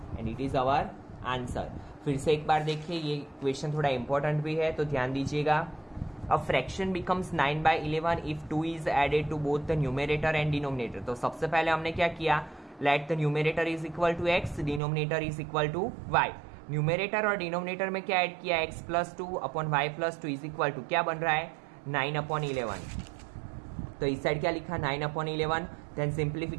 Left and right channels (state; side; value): drops out; left; at 14.8 s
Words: and it is our answer. फिर से एक बार देखिए, ये क्वेश्चन थोड़ा इंपॉर्टेंट भी है तो ध्यान दीजिएगा। A fraction becomes 9/11 if 2 is added to both the numerator and denominator. तो सबसे पहले हमने क्या किया? Let the numerator is equal to x, denominator is equal to y। Numerator और डिनोमिनेटर में क्या ऐड किया? x plus 2 upon y plus 2 is equal to क्या बन रहा है? 9/11। तो इस साइड क्या लिखा? 9/11। देन